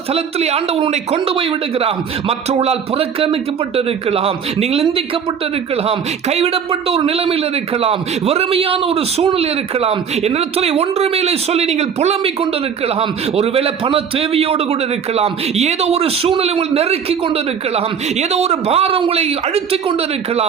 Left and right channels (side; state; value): left; quieter; 7.2 dB